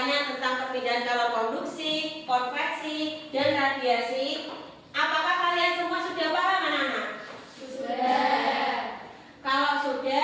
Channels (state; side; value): identical; both; correlation 1.00